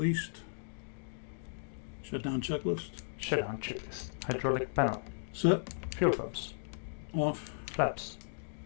Shutdown checklist. Shutdown checklist. Hydraulic panel. Set. Fuel pumps. Off. Flaps.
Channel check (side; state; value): right; silent; digital silence